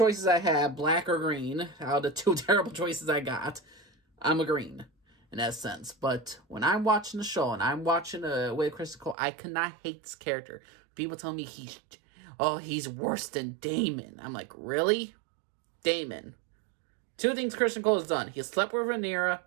I have, black or green, out of the two terrible choices I got, I'm a green, in that sense. But when I'm watching the show, and I'm watching with Criston Cole, I cannot hate this character. People tell me he's worse than Daemon. I'm like, really? Daemon. Two things Criston Cole has done. He slept with Rhaenyra.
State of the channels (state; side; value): drops out; left; at 9.2 s